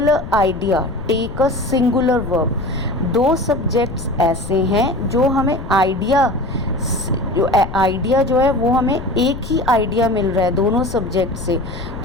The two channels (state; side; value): noise; left; rumble, 10 dB below the sound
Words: idea take a singular verb. दो subjects ऐसे हैं जो हमें आइडिया जो है वो हमें एक ही आइडिया मिल रहा है दोनों सब्जेक्ट से,